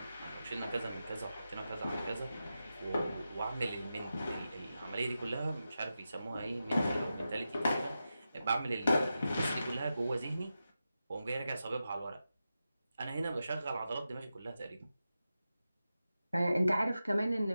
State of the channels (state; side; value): inverted; both; correlation -0.91